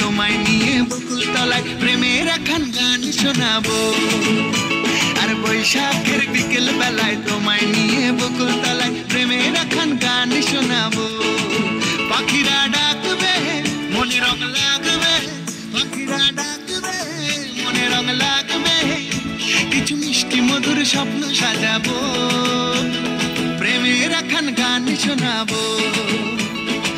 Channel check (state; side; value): identical; both; correlation 1.00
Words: নিয়ে বকুল তলায় প্রেমের এখন গান শোনাবো। আর বৈশাখের বিকেল বেলায় তোমায় নিয়ে বকুল তলায় প্রেমের এখন গান শোনাবো। পাখিরা ডাকবে মনে রং লাগবে, পাখিরা ডাকবে মনে রং লাগবে, কিছু মিষ্টি মধুর স্বপ্ন সাজাবো, প্রেমের এখন গান শোনাবো।